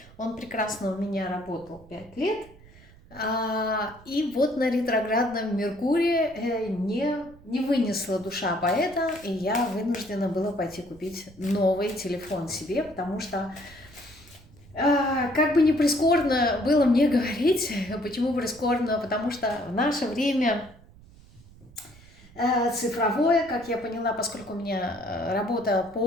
Он прекрасно у меня работал 5 лет. И вот на ретроградном Меркурии не вынесла душа поэта, и я вынуждена была пойти купить новый телефон себе, потому что, как бы ни прискорбно было мне говорить, почему прискорбно, потому что в наше время цифровое, как я поняла, поскольку у меня работа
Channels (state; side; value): noise; right; rumble, 23 dB below the sound